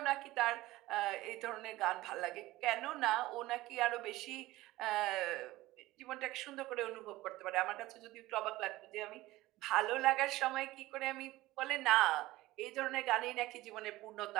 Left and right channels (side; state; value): left; quieter; 17.8 dB